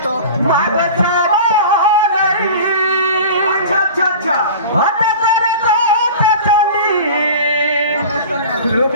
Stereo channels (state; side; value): inverted; both; correlation -0.37